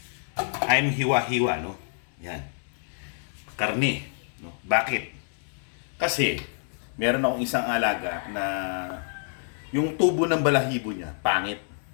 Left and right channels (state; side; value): silent; right; 58 dB below the other